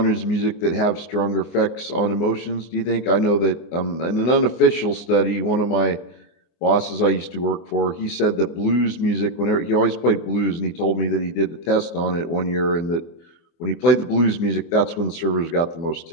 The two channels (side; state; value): right; late; 24 ms